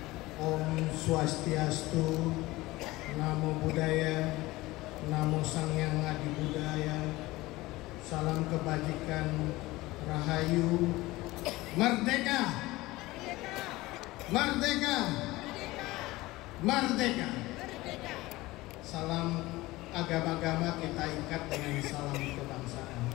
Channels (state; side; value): quieter; right; 19.5 dB